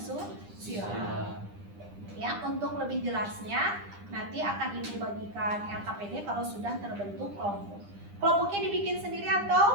Ya, untuk lebih jelasnya nanti akan Ibu bagikan LKPD kalau sudah terbentuk kelompok. Kelompoknya dibikin sendiri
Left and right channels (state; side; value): late; left; 9.9 ms